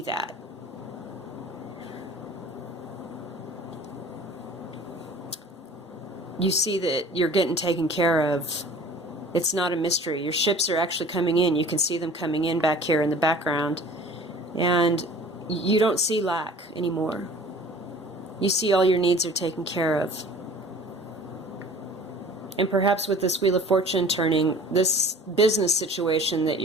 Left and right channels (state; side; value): normal; both; correlation 0.46